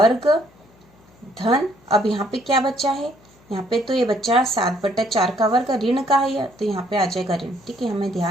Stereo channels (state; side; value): noise; left; hum, 29 dB below the sound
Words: धन, अब यहाँ पे क्या बचा है, यहाँ पे तो ये बच्चा 7/4 का वर्ग ऋण का है, तो यहाँ पे आ जाएगा ऋण, ठीक है, हमें